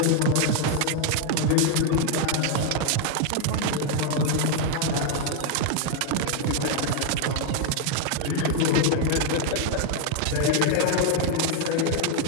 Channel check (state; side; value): different; both; correlation 0.01